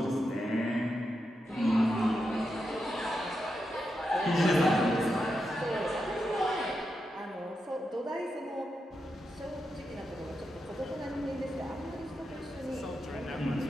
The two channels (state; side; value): normal; both; correlation 0.86